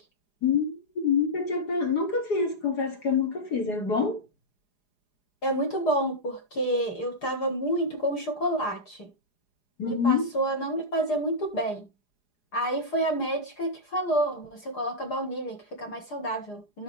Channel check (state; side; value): late; right; 4.9 ms